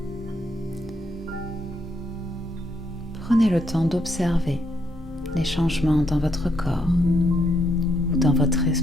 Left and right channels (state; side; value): normal; both; correlation 0.75